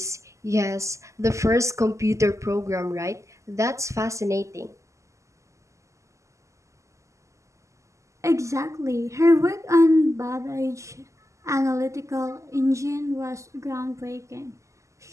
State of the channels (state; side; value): late; left; 0.15 ms